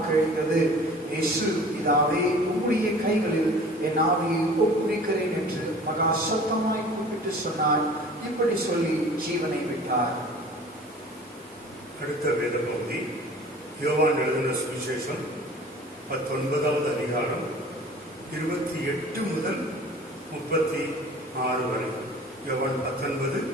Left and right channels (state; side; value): normal; both; correlation 0.45